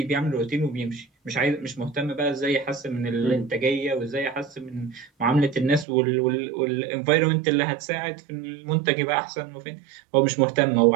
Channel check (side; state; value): left; drops out; at 5.9 s